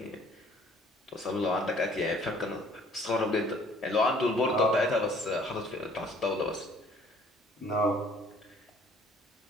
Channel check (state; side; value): normal; both; correlation 0.57